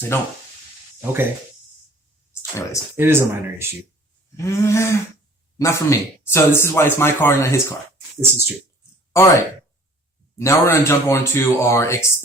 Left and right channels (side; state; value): both; normal; correlation 0.52